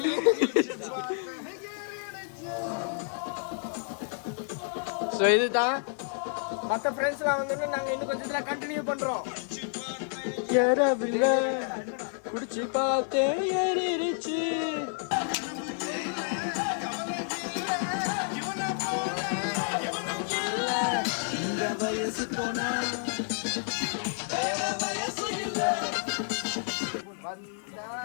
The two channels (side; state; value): right; silent; 58 dB below the other